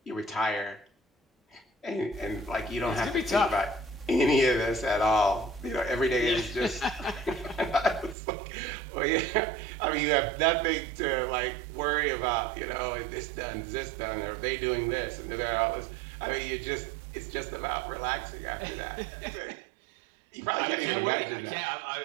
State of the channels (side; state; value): left; drops out; at 8.2 s